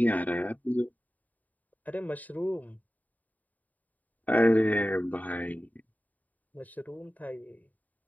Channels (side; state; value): right; late; 0.076 ms